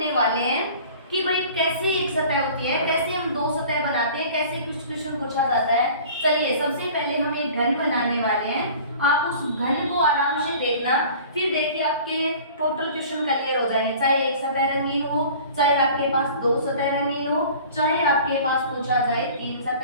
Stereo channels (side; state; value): both; inverted; correlation -0.45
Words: वाले हैं कि भाई कैसे एक सतह होती है, कैसे हम 2 सतह बनाते हैं, कैसे कुछ क्वेश्चन पूछा जाता है। चलिए सबसे पहले हम एक घन बनाने वाले हैं, आप उस घन को आराम से देखना, फिर देखिए आपके टोटल क्वेश्चन क्लियर हो जाएंगे। चाहे एक सतह रंगीन हो, चाहे आपके पास 2 सतह रंगीन हो, चाहे आपके पास पूछा जाए 3